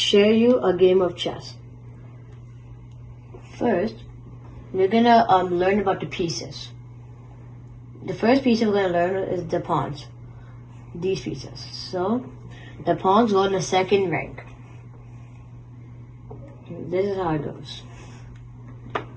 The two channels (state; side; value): identical; both; correlation 1.00